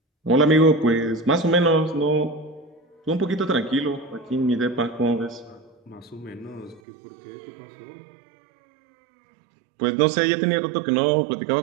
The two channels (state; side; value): drops out; left; at 6.8 s